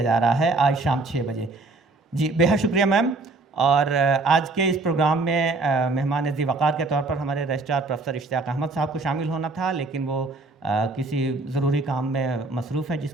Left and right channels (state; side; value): quieter; left; 3.4 dB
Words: جا رہا ہے آج شام 6 بجے. جی بے حد شکریہ میم. اور آج کے اس پروگرام میں مہمان ذی وقار کے طور پر ہمارے رجسٹرار پروفیسر اشتیاق احمد صاحب کو شامل ہونا تھا، لیکن وہ کسی ضروری کام میں مصروف ہیں جس